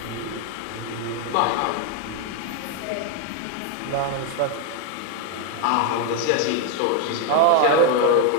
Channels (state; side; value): different; both; correlation 0.01